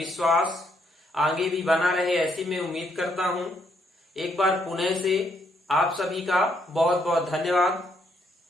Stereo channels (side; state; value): both; normal; correlation 0.73